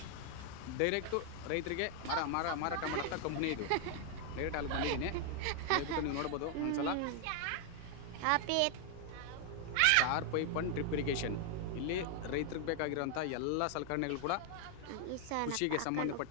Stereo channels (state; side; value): different; both; correlation 0.00